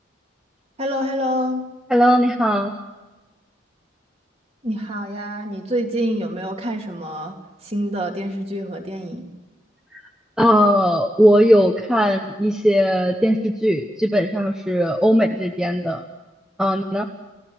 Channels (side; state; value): both; normal; correlation 0.85